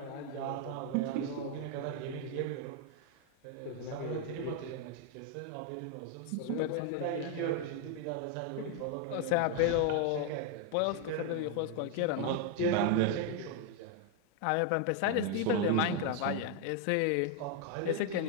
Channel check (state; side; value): different; both; correlation 0.01